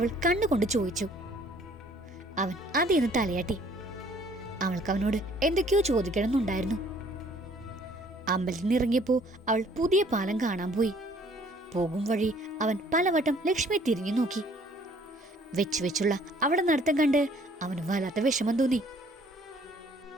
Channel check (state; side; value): normal; both; correlation 0.59